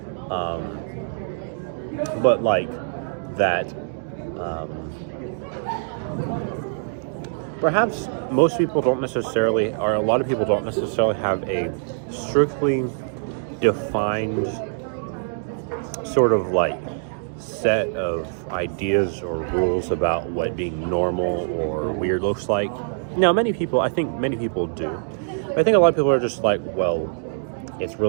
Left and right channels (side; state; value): left; silent; digital silence